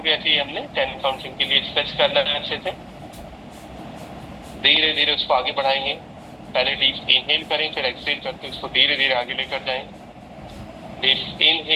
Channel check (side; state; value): both; identical; correlation 1.00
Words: ऐसे ही हमने 10 काउंटिंग के लिए स्ट्रेच करना है अच्छे से। धीरे धीरे उसको आगे बढ़ाएंगे। पहले डीप इनहेल करें, फिर एक्सहेल करके उसको धीरे धीरे आगे लेकर जाएं। डीप